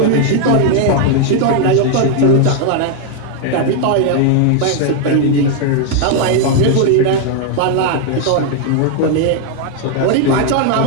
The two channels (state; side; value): different; both; correlation 0.00